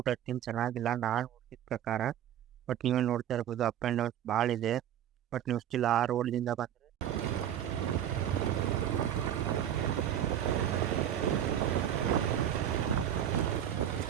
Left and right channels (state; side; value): quieter; left; 10.4 dB